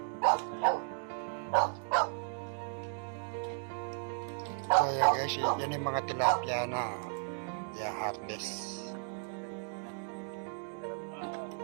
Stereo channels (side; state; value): left; silent; 55 dB below the other